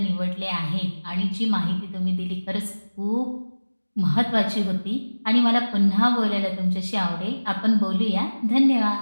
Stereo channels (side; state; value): both; inverted; correlation -1.00